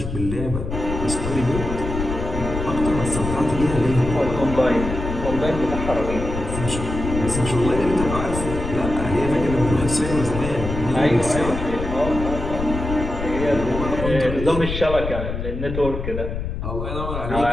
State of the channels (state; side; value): noise; left; rumble, 5 dB below the sound